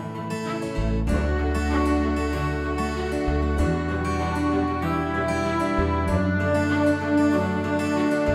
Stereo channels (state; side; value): identical; both; correlation 1.00